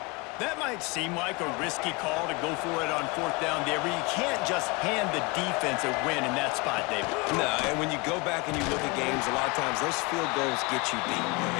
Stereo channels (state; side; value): quieter; right; 26.8 dB